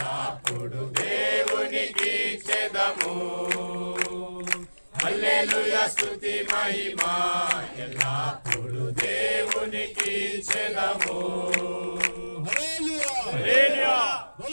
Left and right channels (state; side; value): inverted; both; correlation -1.00